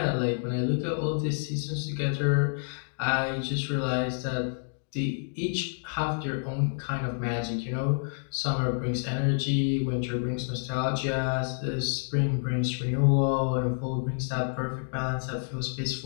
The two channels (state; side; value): silent; right; digital silence